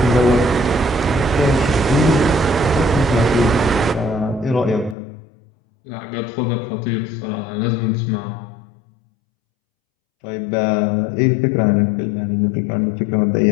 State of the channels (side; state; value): right; drops out; at 5.0 s